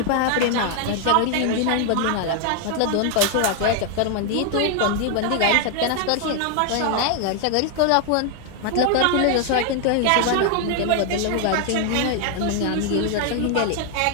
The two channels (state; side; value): different; both; correlation 0.00